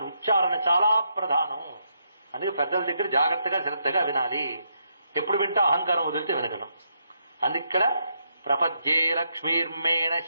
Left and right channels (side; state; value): both; inverted; correlation -0.78